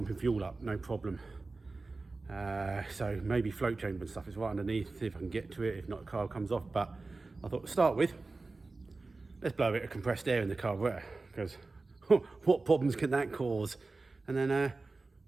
fuel up, no problem. So maybe float chamber and stuff is right underneath, see if I can get to it, if not the car comes off. But I thought to start with, let's blow a bit of compressed air in the carburetor, because what problems can that cause? And then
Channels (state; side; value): quieter; left; 3.6 dB